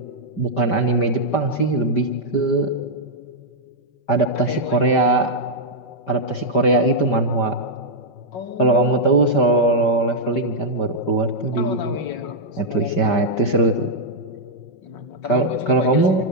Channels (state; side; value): late; right; 5.1 ms